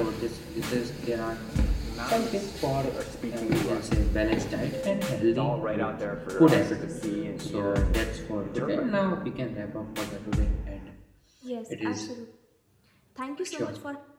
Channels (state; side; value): identical; both; correlation 1.00